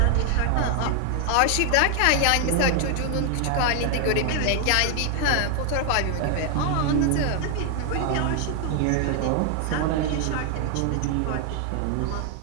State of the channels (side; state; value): both; different; correlation 0.00